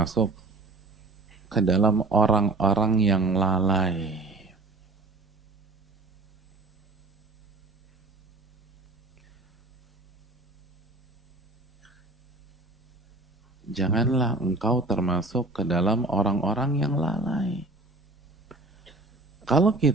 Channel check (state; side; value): quieter; left; 3.2 dB